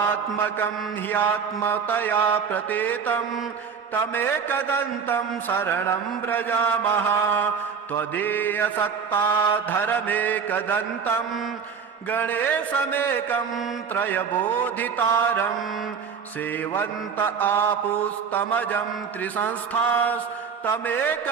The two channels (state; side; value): quieter; left; 6.4 dB